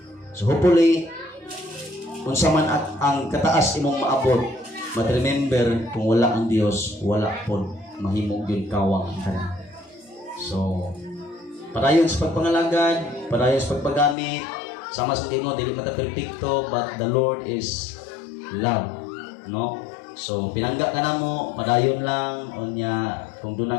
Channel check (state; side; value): drops out; right; at 14.2 s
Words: So hopefully unsa man at ang kataas imong maabot, but remember kung wala ang Dios, wala pod mahimo gyud kawang ang tanan. So padayon sa pagpangalagad, padayon sa pagpagamit, sama sa Ginoo dili mata perpekto, but the Lord is love, no? So pinangga ka namo, padayon lang unya kung